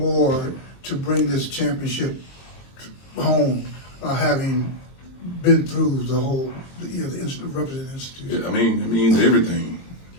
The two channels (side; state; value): right; late; 22 ms